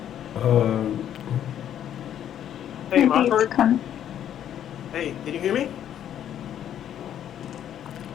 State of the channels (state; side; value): quieter; right; 10.3 dB